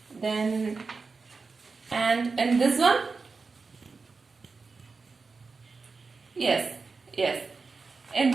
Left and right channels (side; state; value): left; quieter; 4.4 dB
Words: Then, and in this one? Yes. In